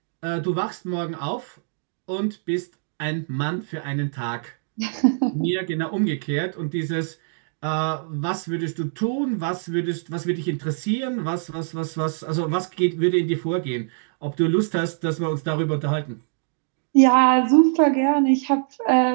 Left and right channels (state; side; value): silent; left; digital silence